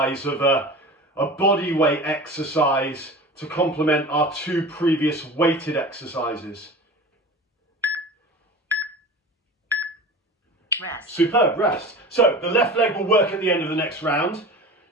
of a body weight exercise to complement our 2 previous weighted exercises. Rest. Superb, rest. So the left leg will work at the end of the next round.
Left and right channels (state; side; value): normal; both; correlation 0.35